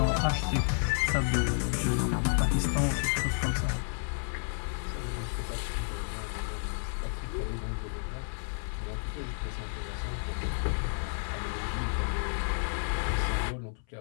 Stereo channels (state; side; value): silent; right; 57 dB below the other